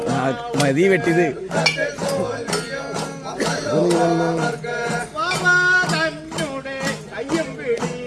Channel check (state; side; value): identical; both; correlation 1.00